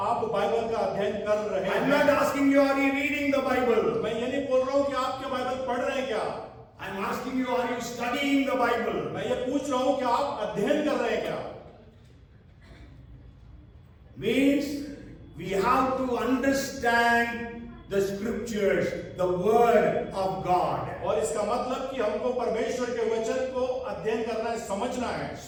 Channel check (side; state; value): both; identical; correlation 1.00